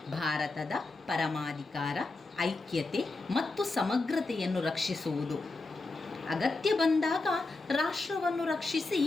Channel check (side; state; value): right; quieter; 3.4 dB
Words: ಭಾರತದ ಪರಮಾಧಿಕಾರ, ಐಕ್ಯತೆ ಮತ್ತು ಸಮಗ್ರತೆಯನ್ನು ರಕ್ಷಿಸುವುದು, ಅಗತ್ಯ ಬಂದಾಗ ರಾಷ್ಟ್ರವನ್ನು ರಕ್ಷಿಸಿ